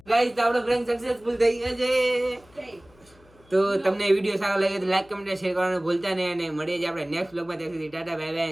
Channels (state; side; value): noise; left; hum, 28 dB below the sound